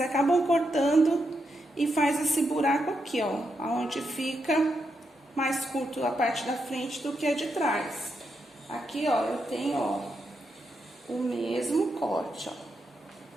cortando e faz esse buraco aqui, ó, onde fica mais curto a parte da frente do que a de trás. Aqui, ó, eu tenho, ó, o mesmo corte, ó.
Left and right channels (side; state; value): both; normal; correlation 0.83